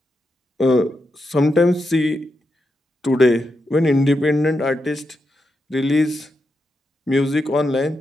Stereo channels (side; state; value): both; normal; correlation 0.86